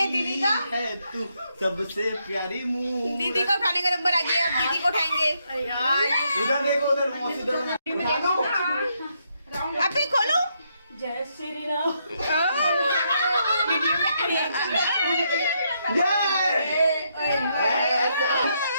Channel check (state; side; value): inverted; both; correlation -0.77